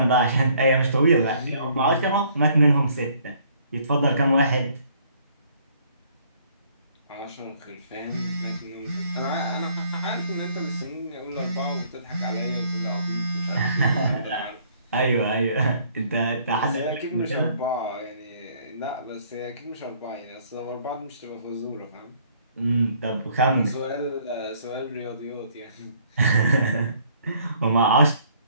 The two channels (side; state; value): both; inverted; correlation -0.61